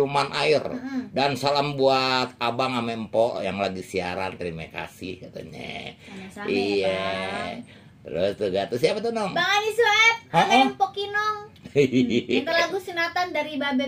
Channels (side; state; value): both; identical; correlation 1.00